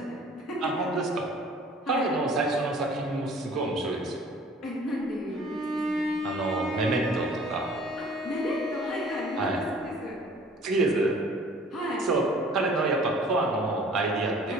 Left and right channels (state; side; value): normal; both; correlation 0.51